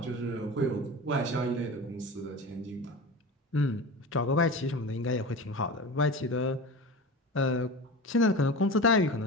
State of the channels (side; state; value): both; normal; correlation 0.30